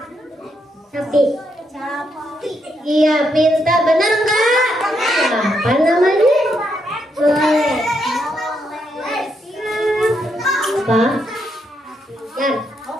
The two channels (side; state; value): both; normal; correlation 0.78